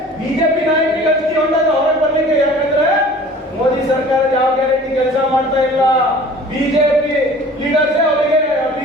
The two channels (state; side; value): normal; both; correlation 0.46